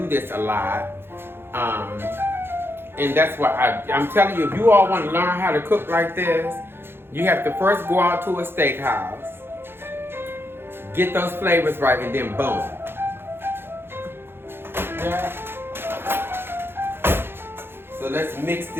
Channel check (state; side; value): late; left; 0.11 ms